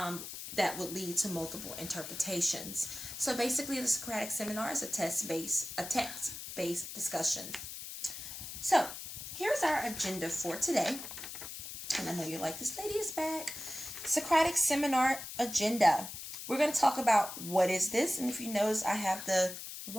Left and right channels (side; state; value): left; noise; hiss, 9 dB below the sound